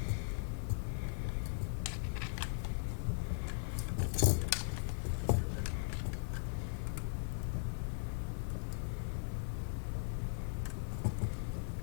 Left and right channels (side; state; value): right; silent; 52 dB below the other